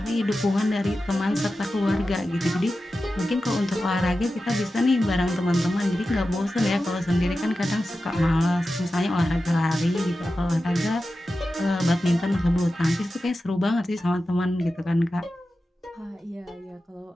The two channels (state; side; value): normal; both; correlation 0.93